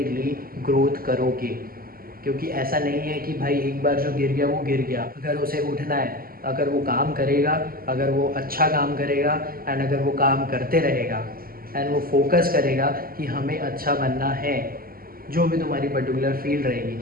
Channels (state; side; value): late; left; 0.42 ms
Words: ग्रोथ करोगे। क्योंकि ऐसा नहीं है कि भाई एक बार जो गिर गया वो गिर गया। अगर उसे उठना है, अगर वो काम करेगा, अगर वो अच्छा काम करेगा एंड अगर वो काम करते रहेगा एंड वो फोकस करेगा कि हमें अच्छा बनना है, जो भी तुम्हारी पर्टिकुलर फील्ड